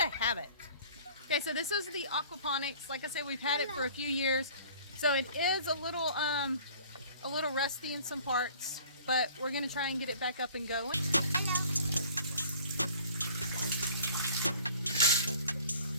habit. Okay, so this is the aquaponics. Like I said, we've had it for a few years, so it is a little rusty in some parts, but we're gonna try and get it back up and going.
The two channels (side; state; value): both; inverted; correlation -0.50